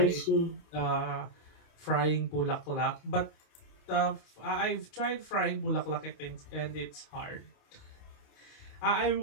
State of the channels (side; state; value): right; late; 28 ms